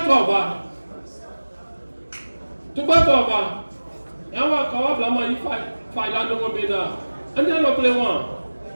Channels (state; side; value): inverted; both; correlation -1.00